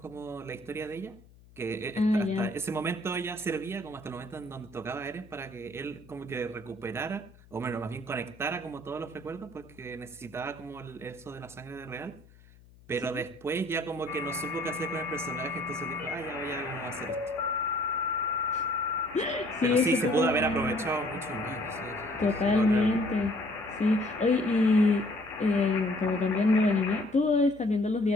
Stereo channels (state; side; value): noise; left; hum, 25 dB below the sound